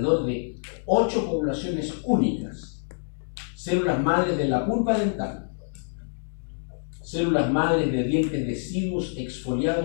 de 8 poblaciones únicas. Células madres de la pulpa dental, células madres de dientes deciduos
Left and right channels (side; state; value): right; silent; digital silence